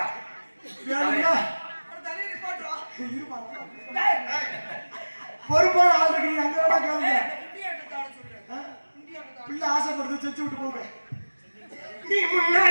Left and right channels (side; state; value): both; inverted; correlation -1.00